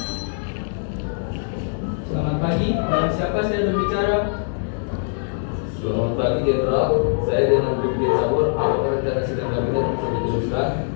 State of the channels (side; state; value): right; silent; digital silence